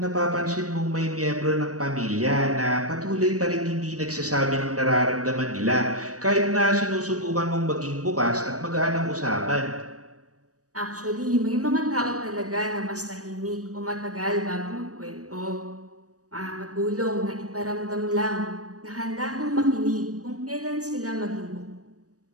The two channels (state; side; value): late; left; 0.66 ms